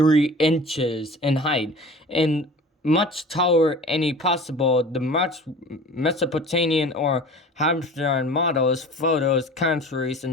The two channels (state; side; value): normal; both; correlation 0.41